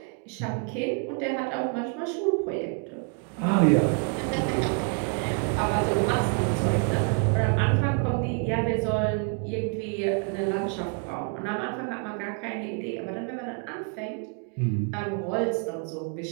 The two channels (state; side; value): quieter; left; 37.9 dB